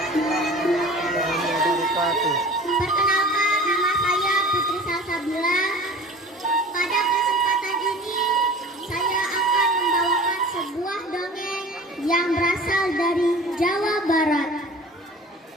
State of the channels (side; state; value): both; normal; correlation 0.41